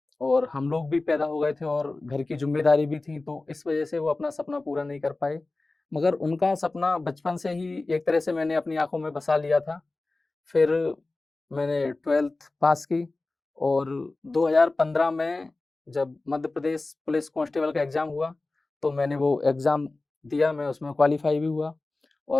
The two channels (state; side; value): quieter; right; 3.2 dB